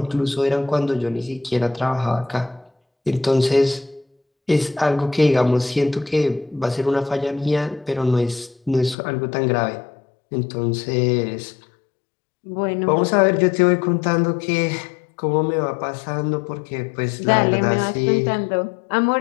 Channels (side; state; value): right; drops out; at 9.0 s